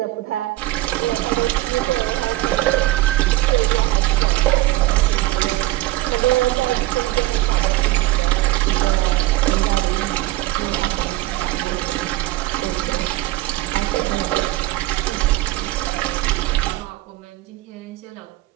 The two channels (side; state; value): left; quieter; 17.4 dB